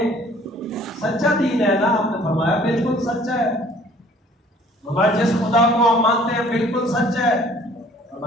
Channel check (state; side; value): normal; both; correlation 0.55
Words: سچا دین ہے نا؟ آپ نے فرمایا بالکل سچا ہے۔ ہمارے جس خدا کو ہم مانتے ہیں بالکل سچ ہے،